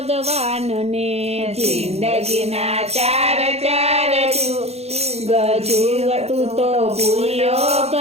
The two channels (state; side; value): late; left; 0.30 ms